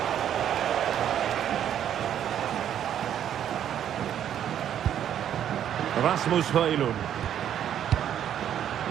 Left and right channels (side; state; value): left; quieter; 10.0 dB